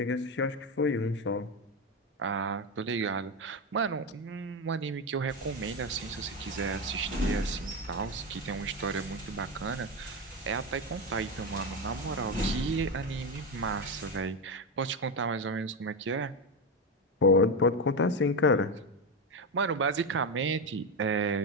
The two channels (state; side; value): normal; both; correlation 0.13